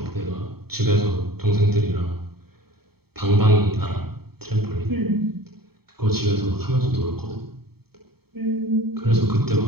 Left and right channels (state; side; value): late; left; 0.96 ms